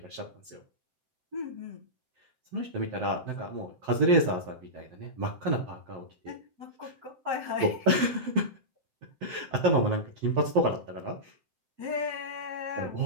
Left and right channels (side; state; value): left; late; 7.7 ms